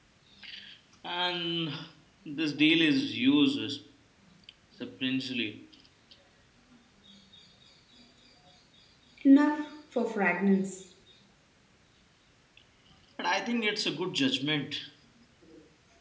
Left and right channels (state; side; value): identical; both; correlation 1.00